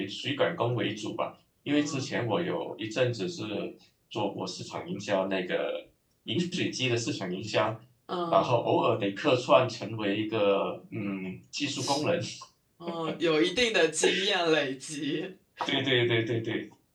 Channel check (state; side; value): identical; both; correlation 1.00